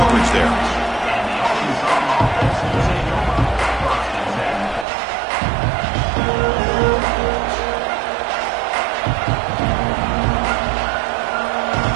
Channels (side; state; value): left; drops out; at 4.9 s